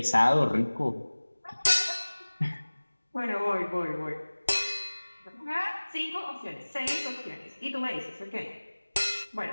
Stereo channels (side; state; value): both; inverted; correlation -1.00